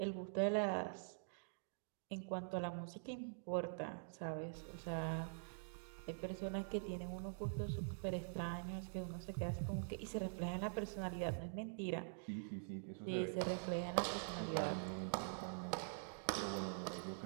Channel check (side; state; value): left; silent; digital silence